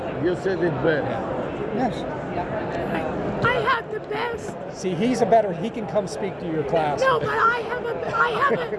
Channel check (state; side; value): identical; both; correlation 1.00